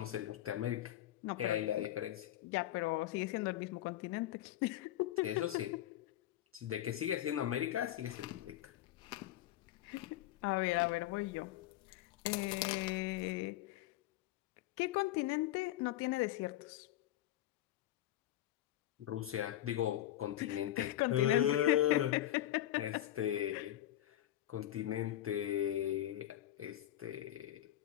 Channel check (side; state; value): right; quieter; 13.5 dB